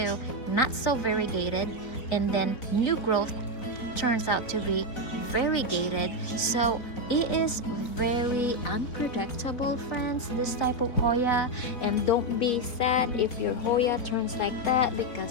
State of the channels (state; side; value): late; right; 4.3 ms